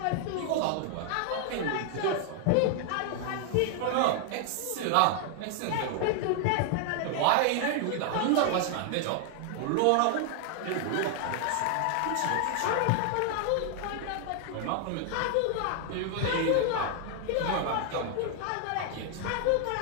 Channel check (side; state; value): both; different; correlation 0.00